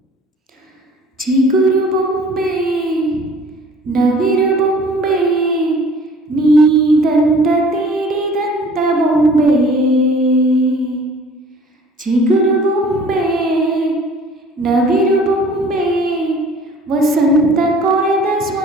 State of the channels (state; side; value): normal; both; correlation 0.50